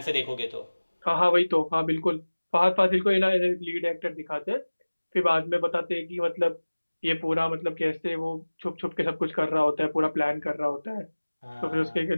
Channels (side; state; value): both; inverted; correlation -1.00